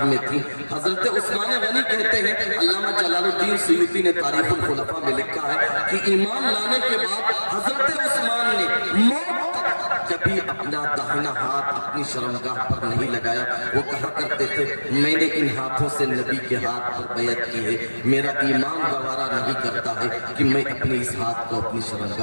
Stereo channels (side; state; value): both; inverted; correlation -1.00